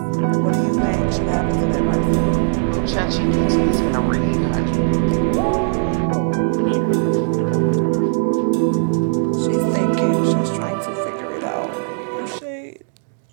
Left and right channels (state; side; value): silent; left; digital silence